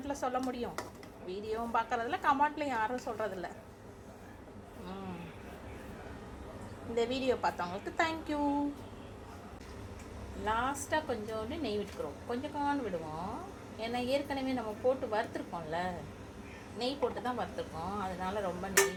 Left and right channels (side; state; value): both; identical; correlation 1.00